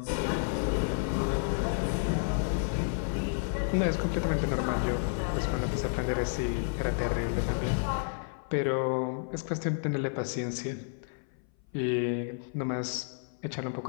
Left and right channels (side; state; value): right; silent; 57 dB below the other